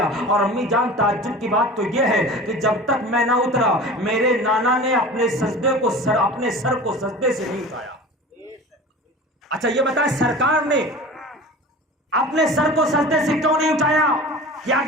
اور امی جان تعجب کی بات تو یہ ہے کہ جب تک میں نہ اترا میرے نانا نے اپنے سر کو سجدے سے نہیں اٹھایا۔ اچھا یہ بتائیں سرکار نے اپنے سر کو سجدے سے کیوں نہیں اٹھایا؟ کہ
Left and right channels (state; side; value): normal; both; correlation 0.36